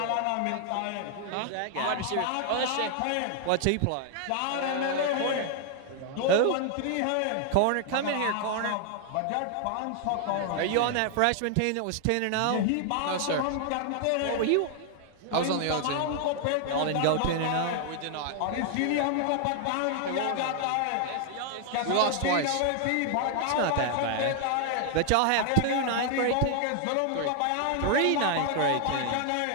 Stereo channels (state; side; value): different; both; correlation 0.00